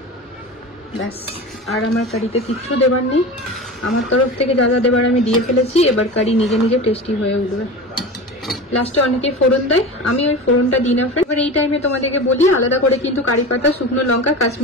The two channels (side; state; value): both; normal; correlation 0.30